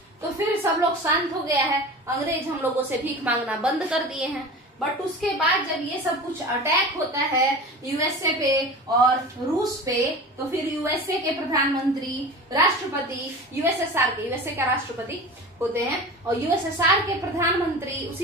तो फिर सब लोग शांत हो गया है, अंग्रेज हम लोगों से भीख मांगना बंद कर दिए हैं। बट उसके बाद जब ये सब कुछ अटैक होता है यूएसए पे और रूस पे, तो फिर यूएसए के प्रधानमंत्री, राष्ट्रपति, यूएसएसआर के, यूएसए का राष्ट्रपति होते हैं, और यूएसएसआर के प्रधानमंत्री,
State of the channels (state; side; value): normal; both; correlation 0.34